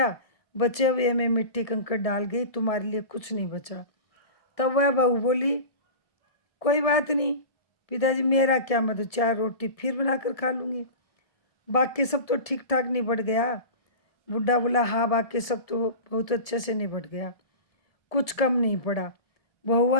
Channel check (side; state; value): right; late; 1.7 ms